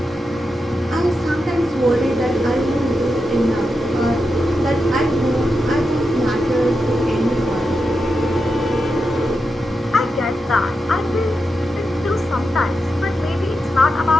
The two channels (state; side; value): normal; both; correlation 0.87